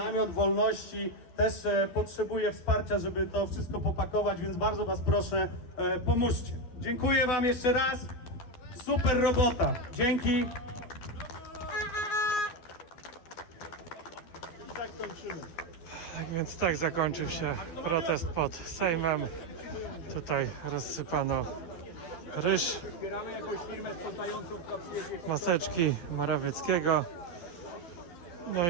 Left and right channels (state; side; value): late; right; 11 ms